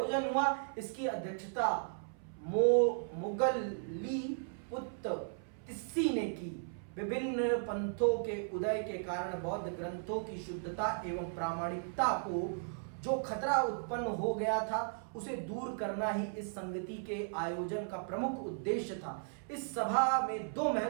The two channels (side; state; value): left; silent; 54 dB below the other